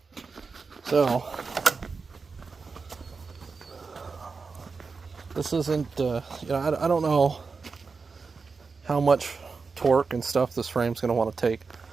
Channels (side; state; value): left; quieter; 4.7 dB